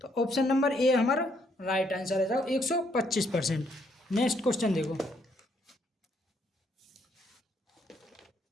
तो ऑप्शन नंबर ए हमारा राइट आंसर है, जाओ 125%। नेक्स्ट क्वेश्चन देखो,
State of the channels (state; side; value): normal; both; correlation 0.71